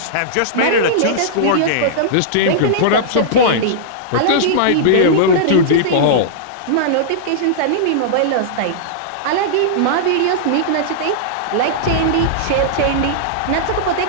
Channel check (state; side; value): different; both; correlation -0.02